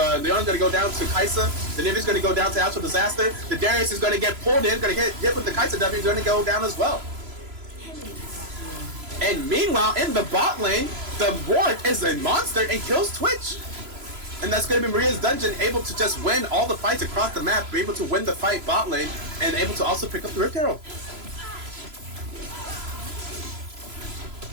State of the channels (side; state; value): left; late; 3.0 ms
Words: Leona's going to go down to Kaisa. The Nivea's going to go down to Astral Disaster. The Darius is going to get pulled in. Going to get hit with the Kaisa W. He's going to go down as well. And meanwhile, in the bot lane, the Warwick is a monster and kills Twitch. And that's going to be Maria's Dungeon able to just win all the fights across the map, be able to win the fight bot lane, and able to also pick up the Rift Herald.